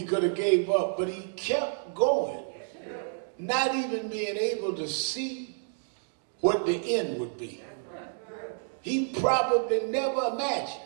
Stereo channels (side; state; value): left; silent; digital silence